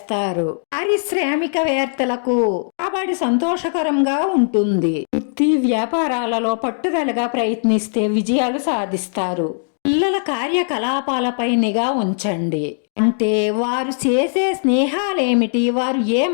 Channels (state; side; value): silent; right; digital silence